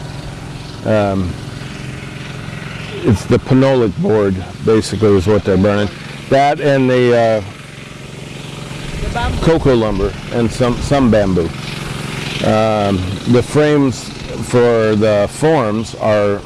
it's the phenolic board, basically, is what they're burning. That and the cocoa lumber and some bamboo. The frames for the forms are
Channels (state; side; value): identical; both; correlation 1.00